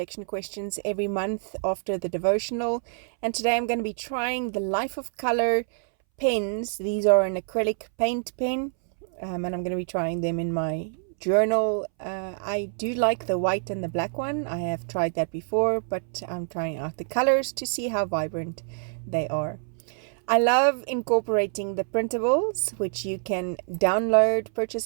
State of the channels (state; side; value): silent; left; 61 dB below the other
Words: questions every month after the devotional, and today I'm going to be trying the Life of Color pens. These are an acrylic paint pen, and I'm going to be trying them in my journal. I do like the white and the black one. I have tried that before, but I'm trying out the colors to see how vibrant they are. I love incorporating the printables, which you can